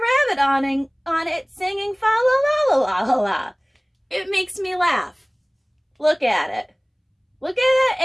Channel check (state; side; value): identical; both; correlation 1.00